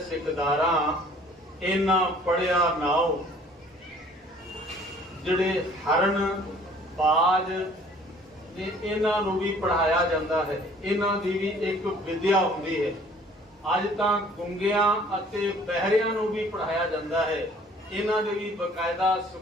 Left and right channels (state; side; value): normal; both; correlation 0.54